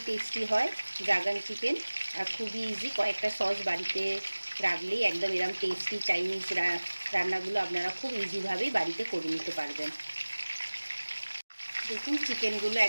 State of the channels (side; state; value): both; inverted; correlation -1.00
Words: টেস্টি হয় ড্রাগন চিকেন, আর খুবই ইজি। কয়েকটা সস বাড়িতে রাখলেই একদম এরকম টেস্টি চাইনিজ রান্নাগুলো আপনারা খুব ইজিভাবেই বাড়িতে করে নিতে পারবেন। দেখুন চিকেনগুলো